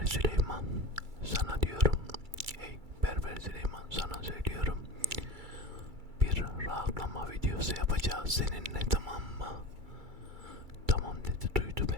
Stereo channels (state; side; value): late; left; 2.3 ms